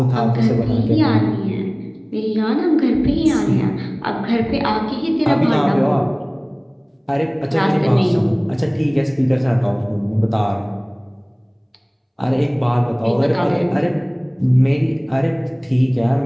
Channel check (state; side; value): identical; both; correlation 1.00